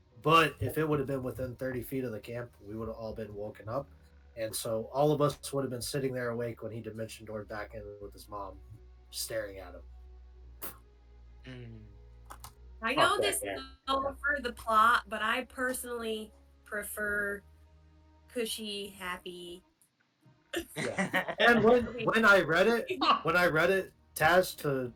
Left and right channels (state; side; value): identical; both; correlation 1.00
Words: But if it would have been within 30 feet of the camp, we would have all been woken up. And so all of us would have been sitting there awake when he dimension doored back in with his mom, staring at him. I Fuck know that this guy. is all for the plot, but I personally prefer cushy, happy. And when I read it, Taz, to